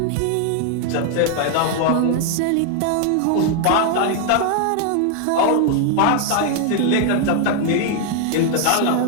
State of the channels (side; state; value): both; different; correlation 0.00